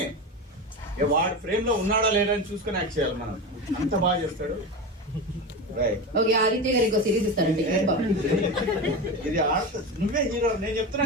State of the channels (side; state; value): both; normal; correlation 0.22